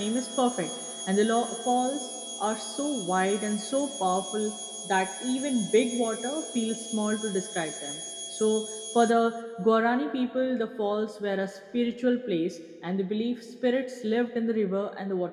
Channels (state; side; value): identical; both; correlation 1.00